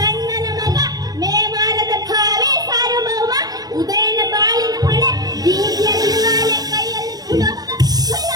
ಮಗ ಮೇವಾರದ ಕಾವೇ ಸಾರ್ವಭೌಮ. ಉದಯನ ಬಾಳಿನ ಹೊಳೆ ಬೀದಿಯ ಬಿರುಗಾಳಿಯ ಕೈಯಲ್ಲಿ ಬಿಡುವಂತ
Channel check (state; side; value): late; left; 0.19 ms